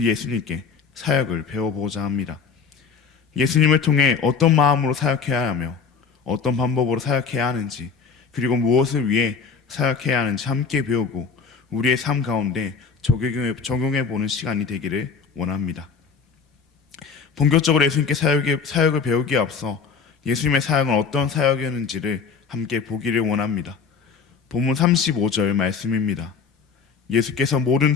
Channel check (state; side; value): quieter; right; 5.6 dB